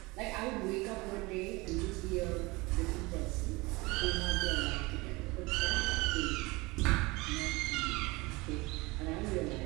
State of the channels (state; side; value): quieter; left; 23.6 dB